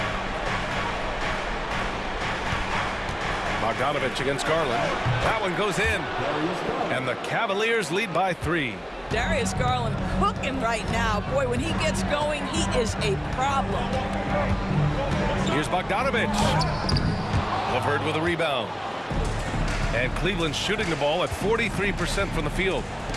Bogdanovich against Garland. That one goes in. And the Cavaliers lead by 3. Darius Garland cooking right now. Boy, when he gets going, he is a problem. Here's Bogdanovic. LeVert with a rebound. And Cleveland shooting the ball at 43% from the field.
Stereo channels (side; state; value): both; identical; correlation 1.00